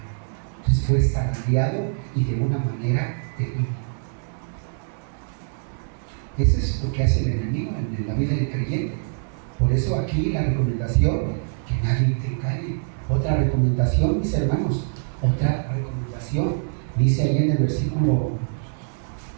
Entonces fue zarandeado y de una manera terrible. Eso es lo que hace el enemigo en la vida del creyente. Por eso aquí la recomendación, que nadie te engañe. Otra recomendación, mis hermanos, otra recomendación, dice ahí en el versículo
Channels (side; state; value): left; silent; 63 dB below the other